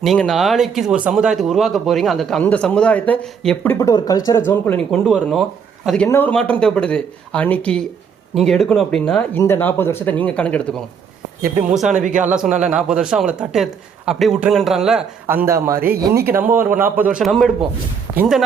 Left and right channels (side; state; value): left; quieter; 6.6 dB